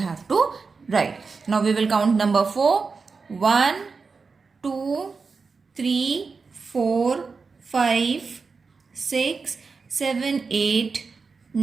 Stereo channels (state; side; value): quieter; left; 4.7 dB